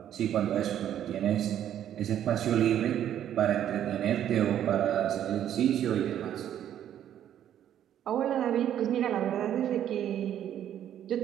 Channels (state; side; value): quieter; left; 10.6 dB